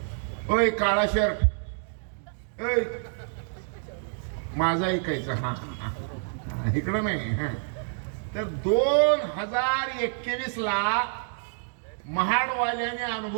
ओय काळा शर्ट, माझा ऐकायचं. हा इकडं नाही. हा तर 2021 ला महाडवाल्याने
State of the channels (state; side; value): silent; left; digital silence